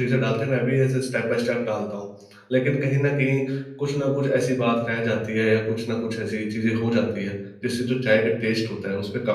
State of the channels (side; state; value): both; identical; correlation 1.00